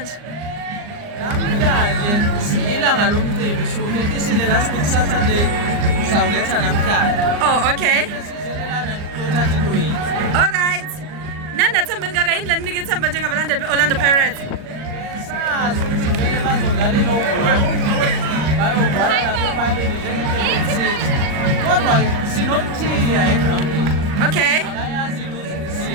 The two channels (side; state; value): left; late; 39 ms